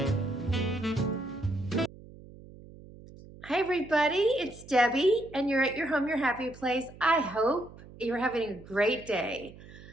everybody, it's Debbie and you're at your home, your happy place. I hope you're having a great day.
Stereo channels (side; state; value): right; noise; hum, 19 dB below the sound